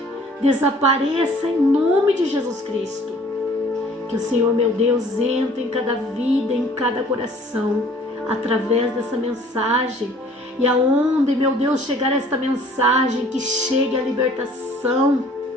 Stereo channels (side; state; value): both; normal; correlation 0.54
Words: desapareça em nome de Jesus Cristo. Que o Senhor, meu Deus, entre em cada vida, em cada coração, através dessa mensagem. E aonde, meu Deus, chegar esta mensagem, que chegue a libertação,